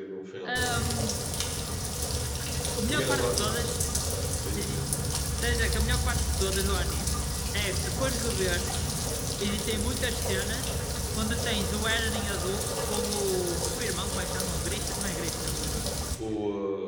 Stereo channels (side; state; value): both; identical; correlation 1.00